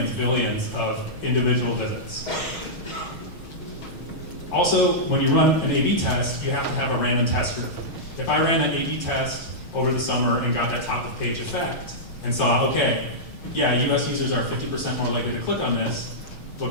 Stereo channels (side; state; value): right; late; 6.3 ms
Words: billions of individual visits. Also, when you run an A/B test, you have to have a random test group. If I ran that A/B test over the summer and got that top of page effect and saw, okay, yeah, US users are 50% more likely to click on this,